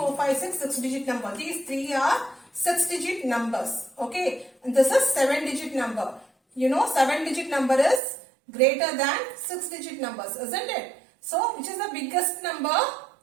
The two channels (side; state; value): left; drops out; at 8.0 s